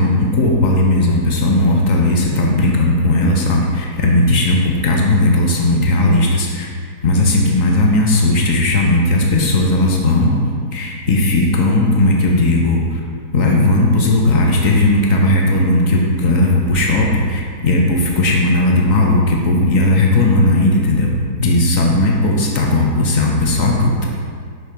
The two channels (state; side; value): late; left; 3.9 ms